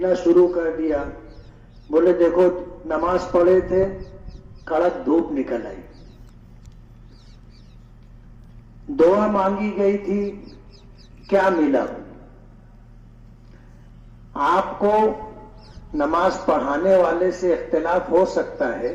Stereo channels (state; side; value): identical; both; correlation 1.00